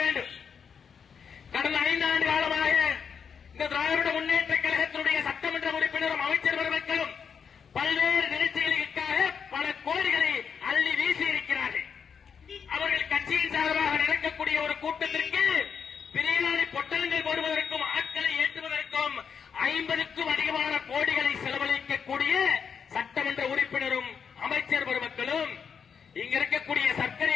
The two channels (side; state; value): right; quieter; 6.7 dB